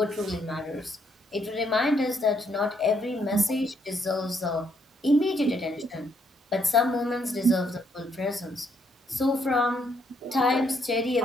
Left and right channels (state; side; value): normal; both; correlation 0.72